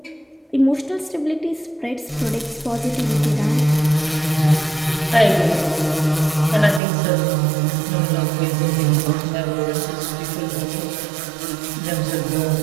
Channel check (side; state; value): left; drops out; at 6.8 s